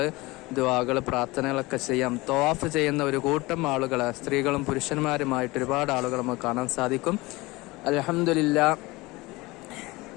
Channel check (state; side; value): quieter; right; 21.9 dB